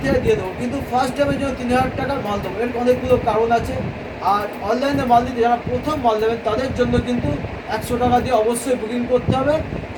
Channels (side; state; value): both; identical; correlation 1.00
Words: দিয়ে দেবো, কিন্তু ফার্স্ট টাইমের জন্য 3000 টাকার মাল দেবো। এর অনেকগুলো কারণ আছে। আর অনলাইনে মাল দিতে যারা প্রথম মাল দেবেন তাদের জন্য কিন্তু 100 টাকা দিয়ে অবশ্যই বুকিং করতে হবে।